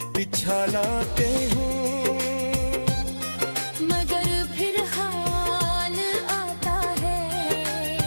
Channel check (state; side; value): inverted; both; correlation -1.00